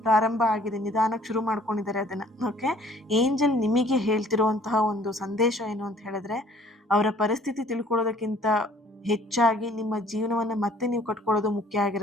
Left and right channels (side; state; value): both; normal; correlation 0.56